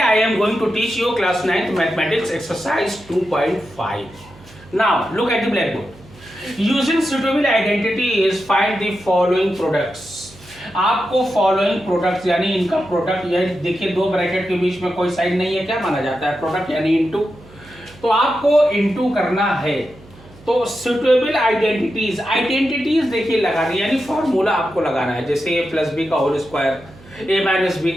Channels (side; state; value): right; noise; hum, 23 dB below the sound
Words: am going to teach you class 9th mathematics exercise 2.5. Now look at the blackboard. Using suitable identity is find the following products. आपको following products यानी इनका product, यानी देखिए दो bracket के बीच में कोई sign नहीं है, क्या माना जाता है? प्रोडक्ट यानी इनटू। तो आपको इनटू करना है तो सुटेबल आइडेंटिटीज देखिए लगानी, यानी फॉर्मूला आपको लगाना है। जैसे ए प्लस बी का होल स्क्वायर, ए माइनस बी